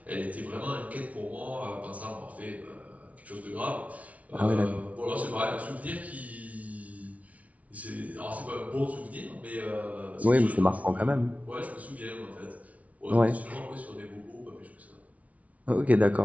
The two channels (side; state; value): left; late; 0.068 ms